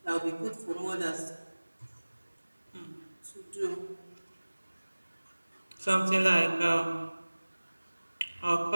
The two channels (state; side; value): inverted; both; correlation -1.00